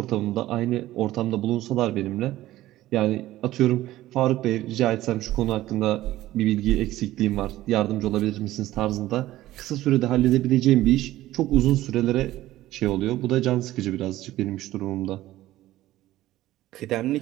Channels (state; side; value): quieter; left; 15.4 dB